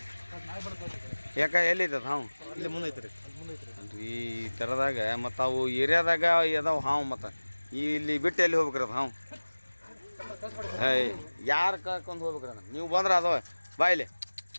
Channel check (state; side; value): inverted; both; correlation -1.00